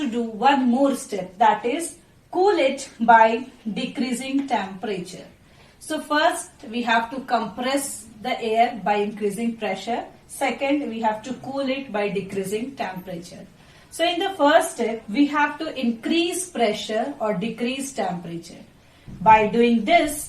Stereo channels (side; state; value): both; identical; correlation 1.00